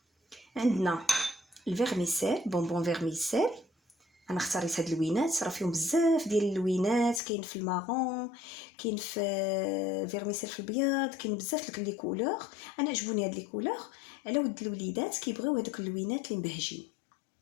عندنا الفيرميسيل بونبون فيرميسيل. انا اختاريت هاد اللوينات راه فيهم بزاف ديال اللوينات، كاين في المارون كاين في فيرميسيل في الابيض، كاين بزاف لي كولور. انا عجبوني هاد لي كولور على ود الوليدات كيبغيو هذوك اللوينات اللي مبهجين.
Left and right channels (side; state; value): right; drops out; at 7.2 s